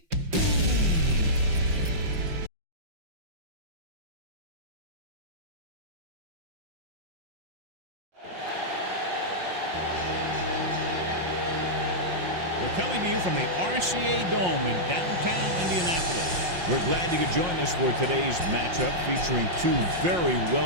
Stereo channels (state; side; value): late; left; 5.6 ms